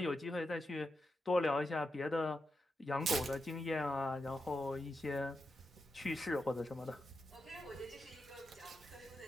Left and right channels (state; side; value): normal; both; correlation 0.87